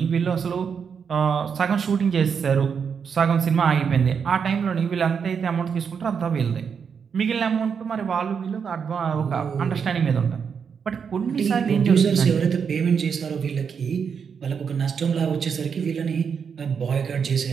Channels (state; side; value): quieter; left; 6.6 dB